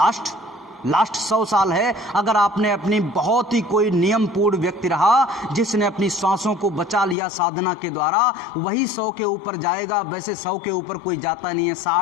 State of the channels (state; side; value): drops out; right; at 7.2 s